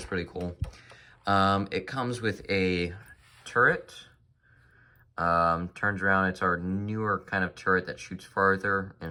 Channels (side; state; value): both; identical; correlation 1.00